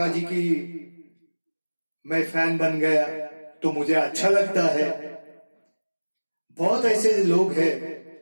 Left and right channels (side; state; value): both; inverted; correlation -1.00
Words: जी की मैं फैन बन गया, तो मुझे अच्छा लगता है। बहुत ऐसे लोग हैं